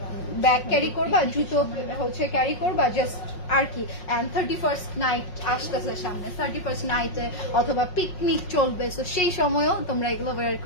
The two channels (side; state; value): right; late; 5.5 ms